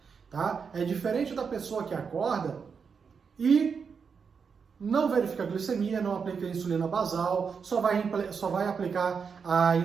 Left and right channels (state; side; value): quieter; left; 6.0 dB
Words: Tá? É diferente da pessoa que acorda e não verifica a glicemia, não aplica a insulina basal, só vai aplicar a